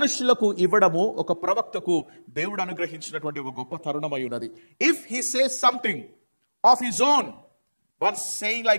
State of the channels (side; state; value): both; inverted; correlation -1.00